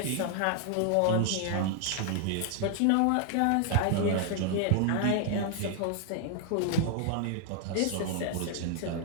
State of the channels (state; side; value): different; both; correlation 0.00